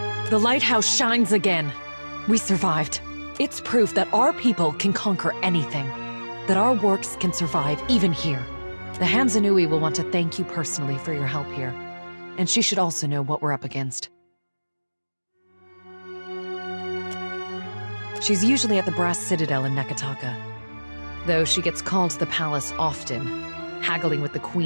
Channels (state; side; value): inverted; both; correlation -1.00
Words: The lighthouse shines again. We survived. It's proof that our people can conquer anything. That our works can survive even here. The Hanzanui will want to thank you personally for your help here. And she should also know what we're up against. She's usually at the Brass Citadel in Nekataka. Though she gets called to the palace often, haggling with the